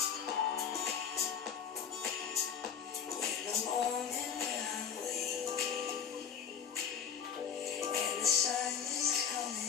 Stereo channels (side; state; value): right; quieter; 7.9 dB